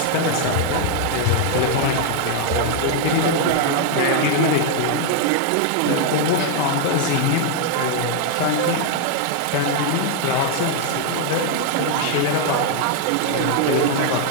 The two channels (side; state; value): both; different; correlation 0.00